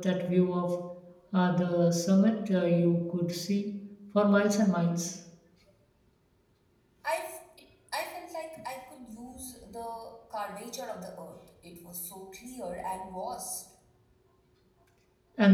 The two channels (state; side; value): identical; both; correlation 1.00